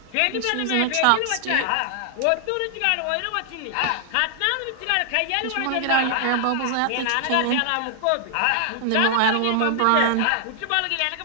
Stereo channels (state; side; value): different; both; correlation 0.00